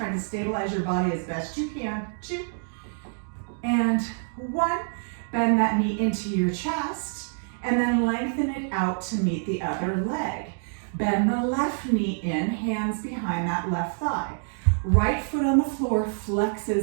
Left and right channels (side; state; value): left; silent; digital silence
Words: to stabilize your body as best you can. 2. And 1. Bend that knee into your chest and then lengthen it out to meet the other leg. Bend the left knee in, hands behind that left thigh. Right foot on the floor